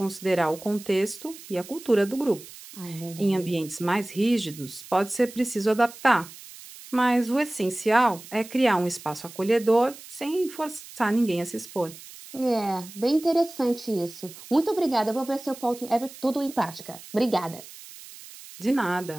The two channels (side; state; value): right; noise; hiss, 17 dB below the sound